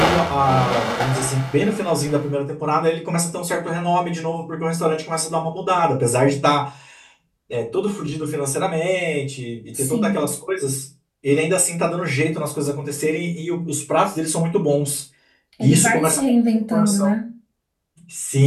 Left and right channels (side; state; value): both; identical; correlation 1.00